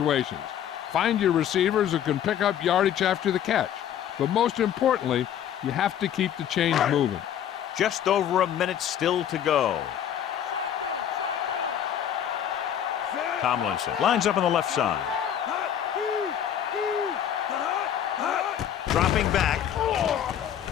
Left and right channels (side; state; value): right; quieter; 9.9 dB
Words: Find your receivers who can pick up yardage after the catch. But most importantly, you have to keep the chains moving. Just over a minute still to go. Tomlinson lines up on the left side. Dropping back.